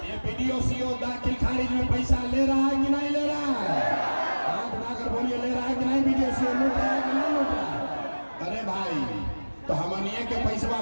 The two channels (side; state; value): both; inverted; correlation -1.00